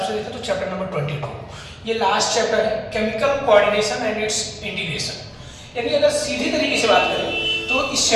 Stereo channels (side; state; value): both; identical; correlation 1.00